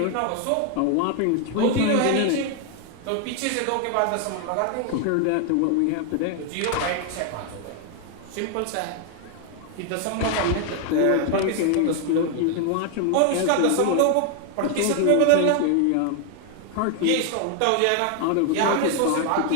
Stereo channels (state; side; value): different; both; correlation 0.00